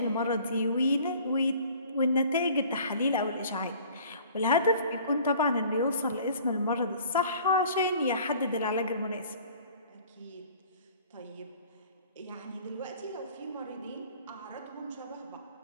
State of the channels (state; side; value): inverted; both; correlation -0.50